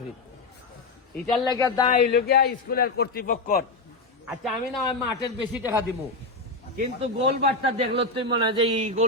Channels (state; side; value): quieter; right; 3.3 dB